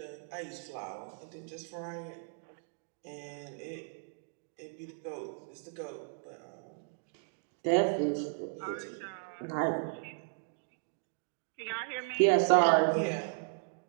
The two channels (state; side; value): silent; left; digital silence